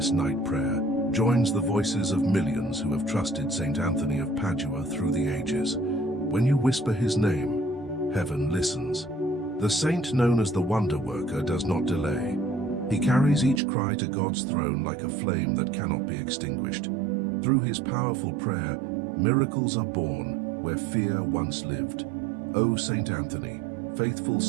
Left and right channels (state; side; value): drops out; left; at 13.6 s